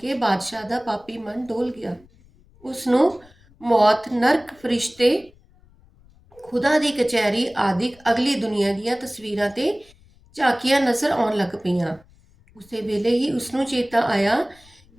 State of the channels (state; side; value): noise; left; rumble, 29 dB below the sound